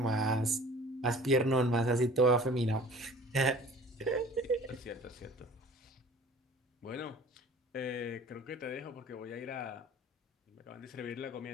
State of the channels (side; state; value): both; normal; correlation 0.47